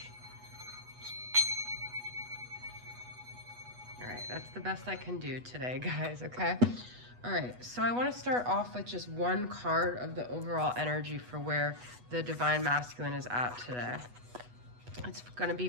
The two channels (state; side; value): late; left; 8.2 ms